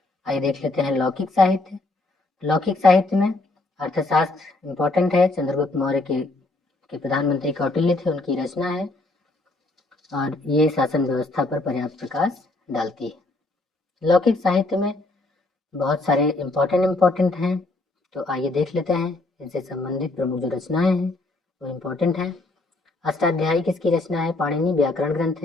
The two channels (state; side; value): quieter; right; 3.0 dB